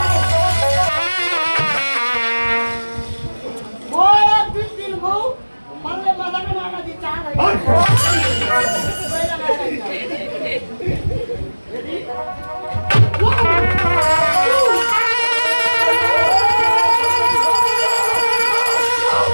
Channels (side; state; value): both; inverted; correlation -1.00